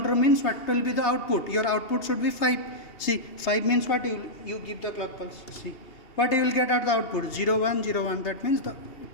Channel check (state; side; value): late; right; 2.8 ms